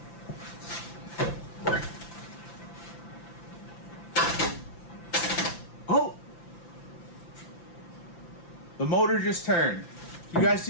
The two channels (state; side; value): late; right; 5.9 ms